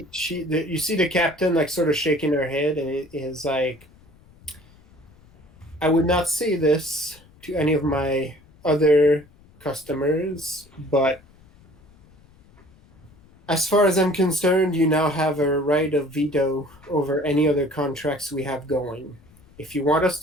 see the captain like sort of shaking her head, and it is like, I would not say this to any of my other customers, but as far as I'm concerned, you now have a right of veto over any other contracts we have going. If you want us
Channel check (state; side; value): noise; left; rumble, 27 dB below the sound